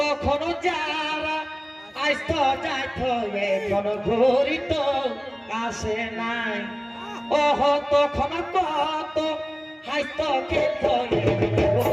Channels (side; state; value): both; identical; correlation 1.00